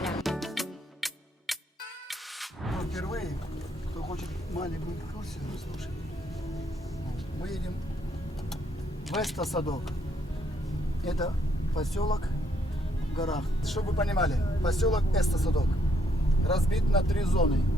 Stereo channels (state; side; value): normal; both; correlation 0.72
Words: Впервые, кто хочет маленькую экскурсию, слушай. Мы едем в Эстосадок. Это поселок в горах. Чтобы вы понимали, поселок Эстосадок разбит на 3 зоны.